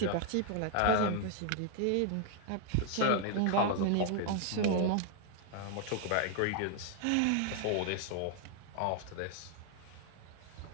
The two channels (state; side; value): different; both; correlation 0.00